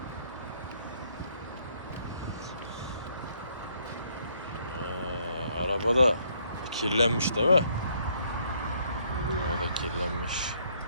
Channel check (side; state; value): both; inverted; correlation -0.68